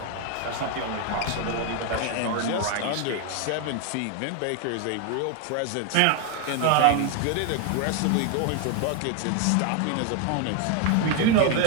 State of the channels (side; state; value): both; different; correlation 0.01